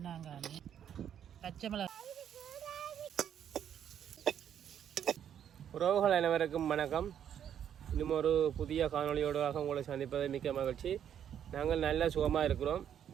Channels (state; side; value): quieter; left; 9.3 dB